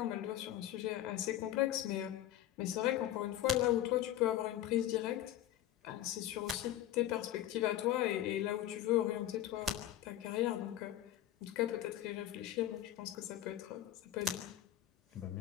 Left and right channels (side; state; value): right; quieter; 12.6 dB